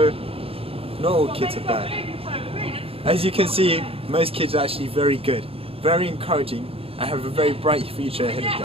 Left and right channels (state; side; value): late; left; 0.27 ms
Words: not all kids are bad. As you can see, most kids are actually very good, very encouraging, and have a very bright future ahead of